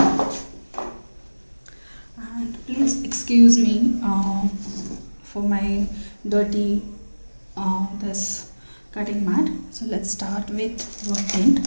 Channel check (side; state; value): both; inverted; correlation -1.00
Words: And please excuse me for my dirty this cutting mat. So let's start with wood tint.